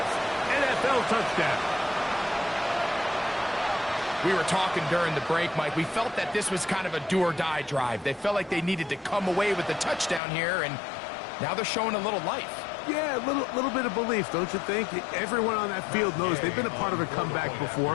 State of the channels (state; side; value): drops out; right; at 10.2 s